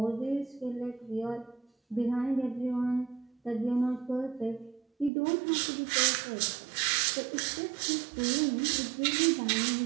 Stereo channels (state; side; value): drops out; left; at 5.1 s